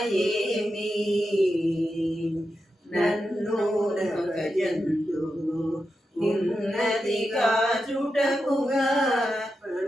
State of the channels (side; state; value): both; normal; correlation 0.88